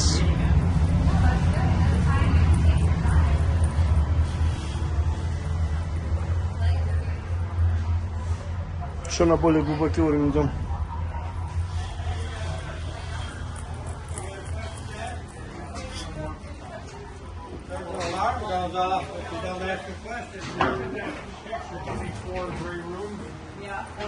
Еще на более глубокий уровень идем. Alarm goes off if you don't ask a question. Picture 24 gray rooms. Yeah.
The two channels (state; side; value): identical; both; correlation 1.00